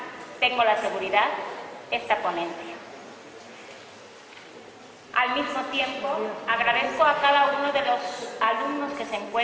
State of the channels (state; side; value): identical; both; correlation 1.00